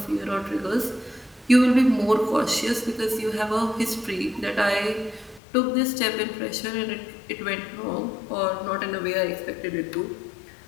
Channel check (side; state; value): right; drops out; at 5.4 s